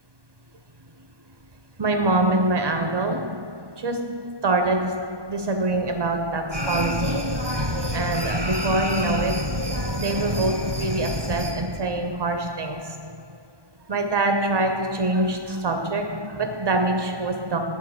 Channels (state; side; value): late; left; 1.2 ms